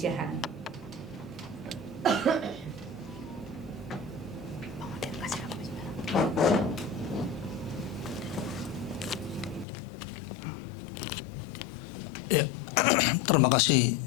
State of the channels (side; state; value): right; drops out; at 9.7 s